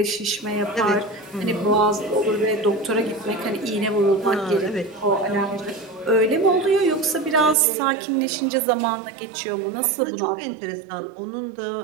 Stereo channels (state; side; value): drops out; left; at 7.6 s